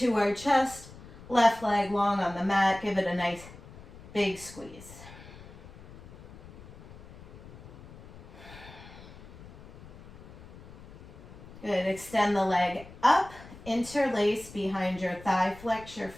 our chest, left leg long on the mat. Give it a nice big squeeze. Good. Extend the leg up, interlace behind your thigh, flex your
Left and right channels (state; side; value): noise; left; rumble, 18 dB below the sound